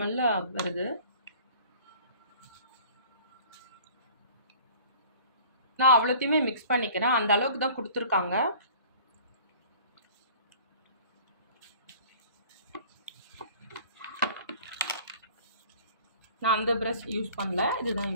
வருது. நான் அவ்வளோத்தையுமே மிக்ஸ் பண்ணிக்கிறேன். அந்த அளவுக்கு தான் கொடுத்துருக்காங்க. நான் அந்த ப்ரஷ் யூஸ் பண்ணல, இதுதான்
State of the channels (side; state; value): both; inverted; correlation -0.48